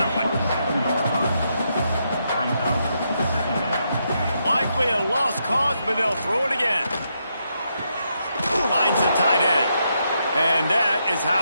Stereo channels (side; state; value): both; inverted; correlation -0.80